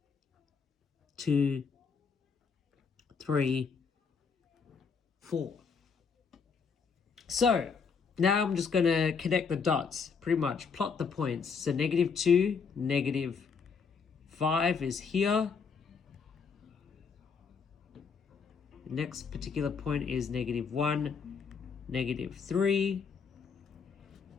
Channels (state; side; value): quieter; right; 5.7 dB